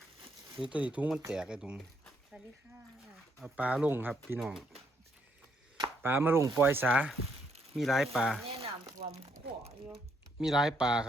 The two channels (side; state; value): both; normal; correlation 0.73